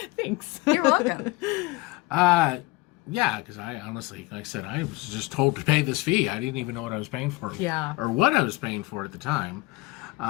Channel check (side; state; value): right; quieter; 21.9 dB